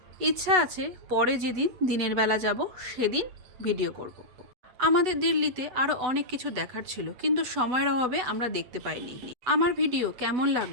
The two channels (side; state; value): left; late; 8.0 ms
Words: ইচ্ছা আছে পরে যেদিন দিনের বেলা যাব সেদিন ভিডিও করব। আমাদের দিল্লিতে আরও অনেক কিছু দেখার ছিল, কিন্তু সময়ের অভাবে আমরা দেখতে পাইনি। আমার ভিডিও কেমন